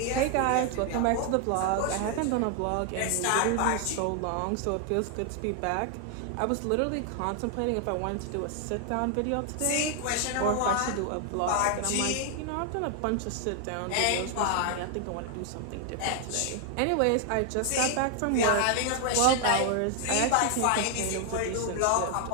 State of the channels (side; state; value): both; different; correlation 0.00